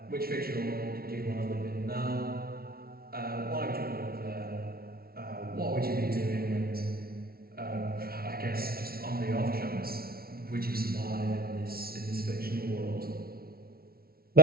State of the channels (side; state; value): left; late; 0.44 ms